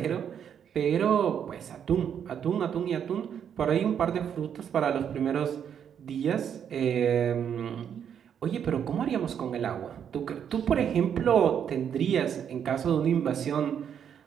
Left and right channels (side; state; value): left; quieter; 8.4 dB